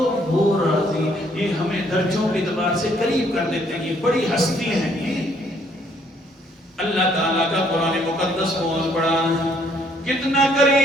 وہ راضی، یہ ہمیں درجوں کے اعتبار سے قریب کر دیتے ہیں. یہ بڑی ہستی ہیں. یہ اللہ تعالیٰ کا قرآن مقدس بہت بڑا ہے. کتنا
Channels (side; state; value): both; normal; correlation 0.66